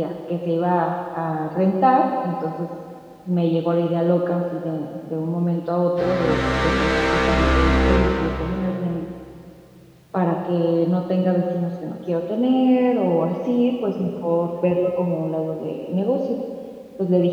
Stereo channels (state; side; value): identical; both; correlation 1.00